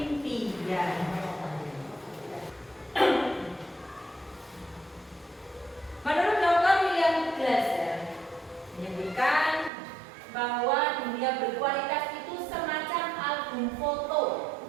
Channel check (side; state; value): left; drops out; at 9.7 s